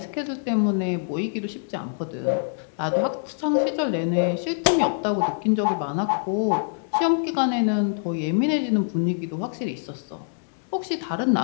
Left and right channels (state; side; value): silent; right; digital silence